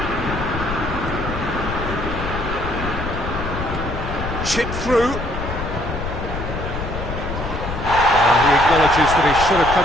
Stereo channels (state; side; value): noise; left; rumble, 6 dB below the sound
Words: Chip through. He acknowledges that he should have